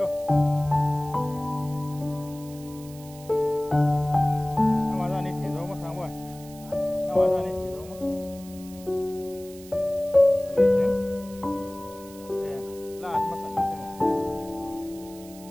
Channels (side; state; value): right; noise; hiss, 20 dB below the sound